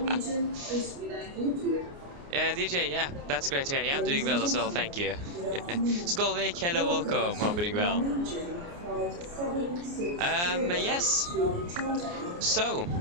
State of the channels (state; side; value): late; left; 29 ms